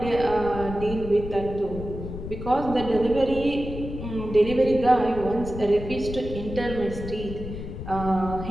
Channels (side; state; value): left; noise; rumble, 9 dB below the sound